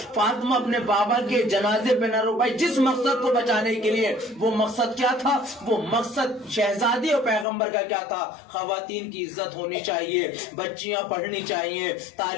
فاطمہ اپنے بابا کے جنازے پہ نہ رو پائی، جس مقصد کو بچانے کے لیے، وہ مقصد کیا تھا؟ وہ مقصد شہزادی اور پیغمبر کا کیا تھا؟ خواتین کی عزت ہونی چاہیے، بچیاں پڑھنی چاہیے،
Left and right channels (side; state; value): right; drops out; at 7.5 s